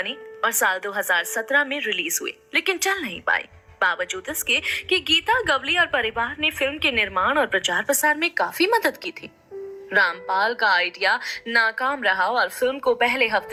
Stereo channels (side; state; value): both; identical; correlation 1.00